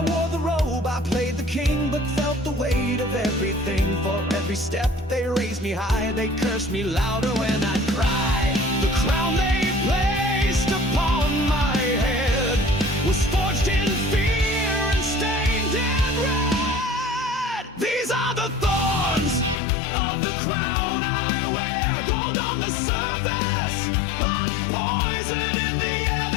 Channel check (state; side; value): drops out; right; at 19.6 s